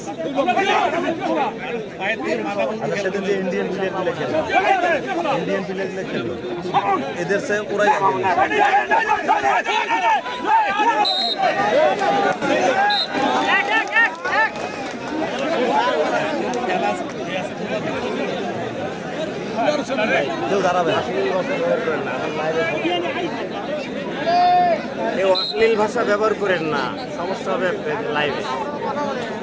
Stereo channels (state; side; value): identical; both; correlation 1.00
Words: সেদিন যে ইন্ডিয়ান প্লেয়ারগুলো খেললো, এদের সে ওরাই দাঁড়াবে। এই অশ্লীল ভাষা ব্যবহার করেন না, সমস্যা হবে লাইভে।